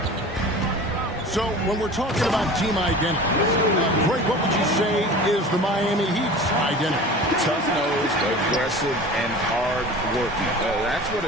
So when we're talking about team identity, Greg, what would you say is the Miami Heat's identity? Tough-nosed, aggressive, and hard-working. That's what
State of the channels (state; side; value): normal; both; correlation 0.38